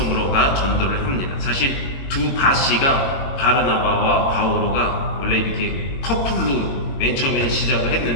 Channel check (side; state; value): right; late; 22 ms